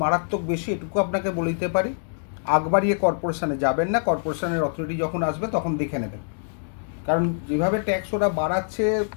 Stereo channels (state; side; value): silent; right; digital silence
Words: মারাত্মক বেশি, এটুকু আপনাকে বলে দিতে পারি। আগ বাড়িয়ে কর্পোরেশনে যাবেন না, কর্পোরেশনের অথরিটি যখন আসবে তখন দেখে নেবেন। কারণ যেভাবে ট্যাক্স ওরা বাড়াচ্ছে,